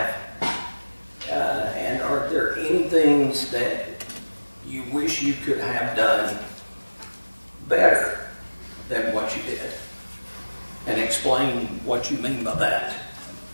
And are there any things that you wish you could have done better than what you did? And explain what you mean by that.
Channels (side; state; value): both; inverted; correlation -1.00